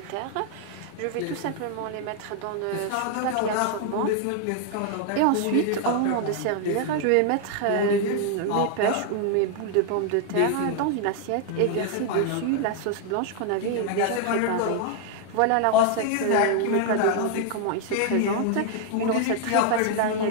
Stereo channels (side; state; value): both; different; correlation 0.00